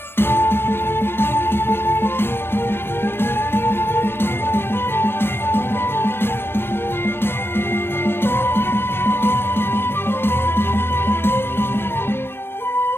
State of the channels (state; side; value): late; right; 0.11 ms